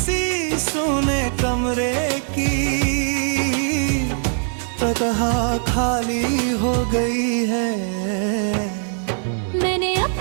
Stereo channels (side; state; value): left; silent; 55 dB below the other